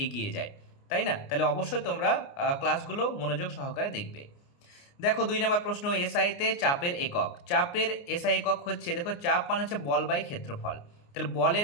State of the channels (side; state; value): right; late; 29 ms